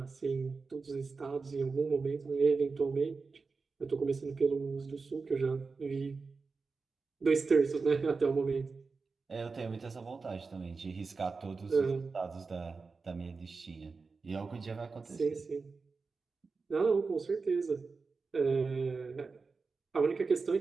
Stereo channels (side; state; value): left; quieter; 4.4 dB